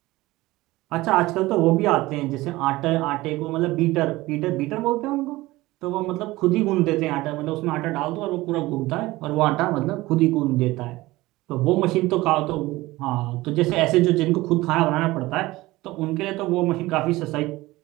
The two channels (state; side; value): quieter; left; 19.1 dB